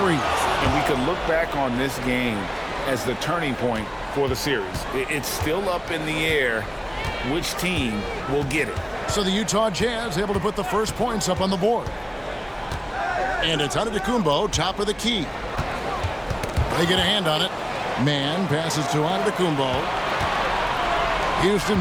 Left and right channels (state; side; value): identical; both; correlation 1.00